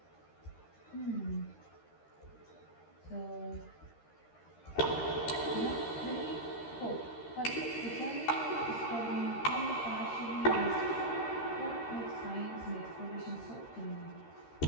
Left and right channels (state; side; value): late; right; 13 ms